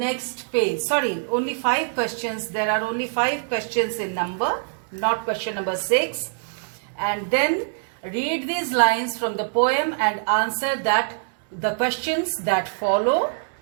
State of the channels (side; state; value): left; silent; digital silence